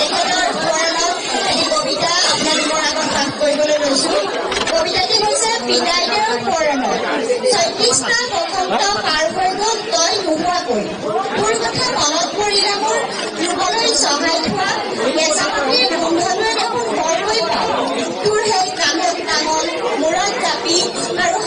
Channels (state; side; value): identical; both; correlation 1.00